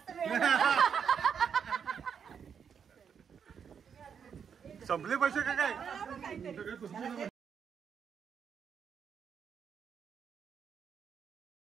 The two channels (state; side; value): quieter; left; 7.2 dB